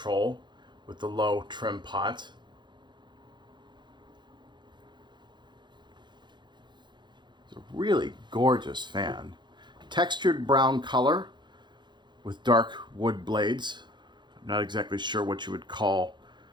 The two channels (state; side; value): late; left; 0.22 ms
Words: with the low trim pot. It's a really gorgeous fan. Textured brown color with dark wood blades. I'm not exactly sure what you would call